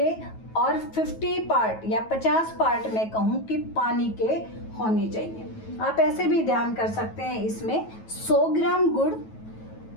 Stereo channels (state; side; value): late; right; 9.2 ms